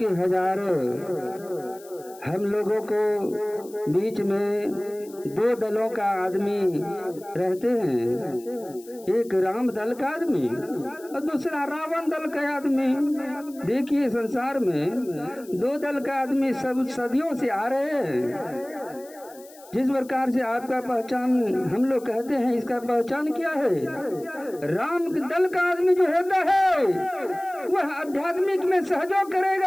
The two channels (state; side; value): noise; left; hiss, 23 dB below the sound